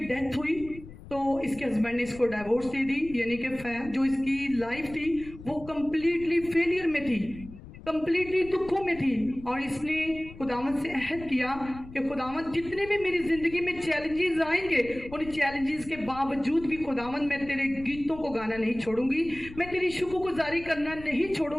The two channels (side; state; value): left; noise; rumble, 16 dB below the sound